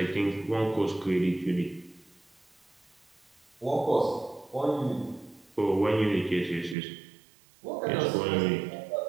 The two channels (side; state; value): left; drops out; at 6.8 s